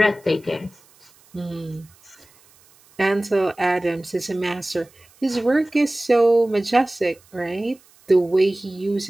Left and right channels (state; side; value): noise; right; hiss, 29 dB below the sound